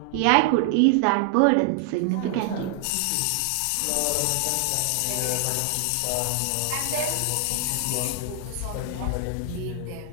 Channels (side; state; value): both; different; correlation 0.00